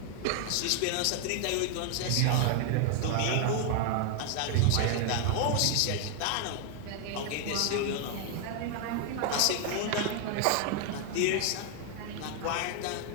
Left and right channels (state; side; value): different; both; correlation 0.00